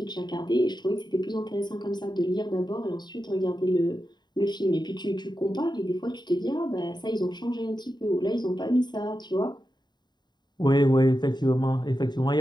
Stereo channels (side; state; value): right; late; 0.21 ms